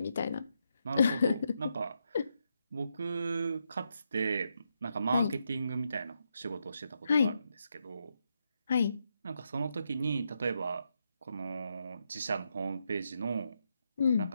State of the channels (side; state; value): both; inverted; correlation -0.82